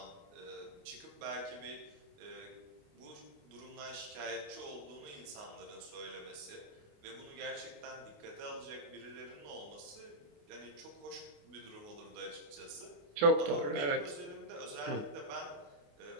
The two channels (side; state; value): left; late; 28 ms